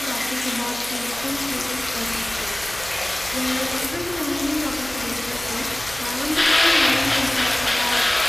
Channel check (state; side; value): noise; right; hum, 17 dB below the sound